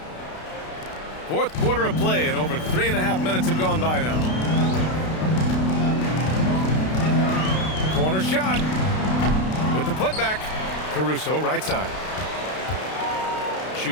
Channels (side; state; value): right; late; 32 ms